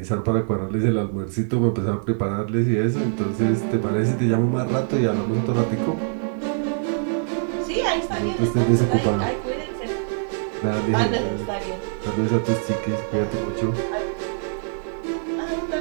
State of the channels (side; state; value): left; silent; 63 dB below the other